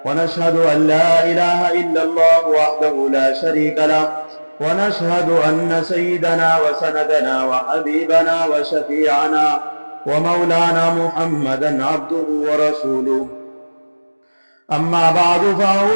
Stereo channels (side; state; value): both; inverted; correlation -1.00